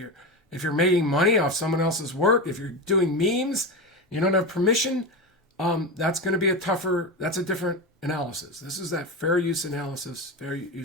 you're making money off someone else's work, if you're doing memes, you don't have permission, that's going to be that's a different analysis. This is that fair use analysis, fair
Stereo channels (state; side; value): normal; both; correlation 0.19